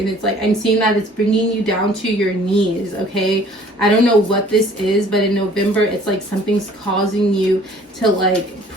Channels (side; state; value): both; normal; correlation 0.54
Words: it's like I'm seeing that it's bringing you down to your knees. Okay, I don't know what this is, but in November it's like something's causing you to like